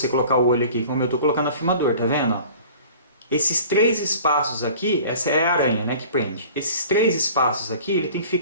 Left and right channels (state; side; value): inverted; both; correlation -0.45